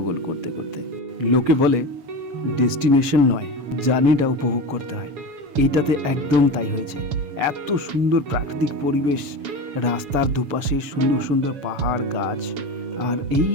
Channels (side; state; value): left; late; 7.1 ms